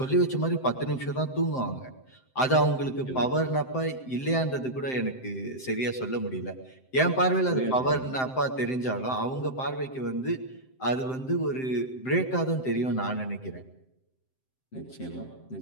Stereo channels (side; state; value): right; late; 7.7 ms